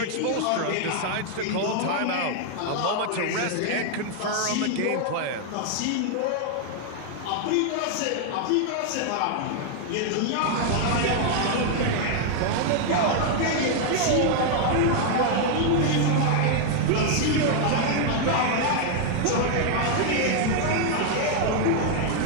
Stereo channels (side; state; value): both; different; correlation 0.00